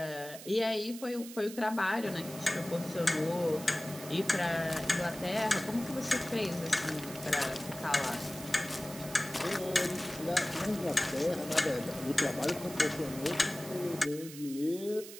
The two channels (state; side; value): noise; right; hiss, 14 dB below the sound